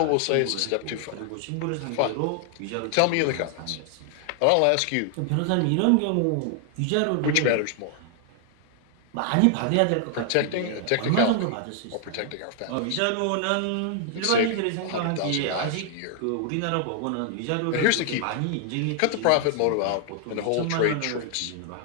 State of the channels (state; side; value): different; both; correlation 0.00